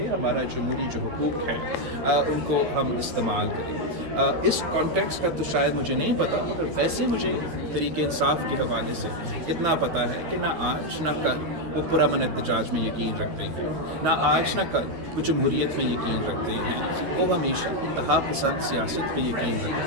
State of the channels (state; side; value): late; left; 13 ms